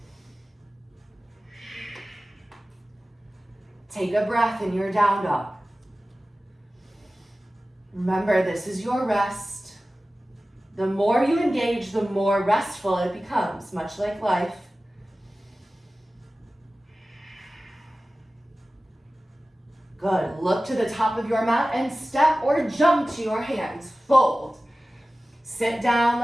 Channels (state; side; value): normal; both; correlation 0.96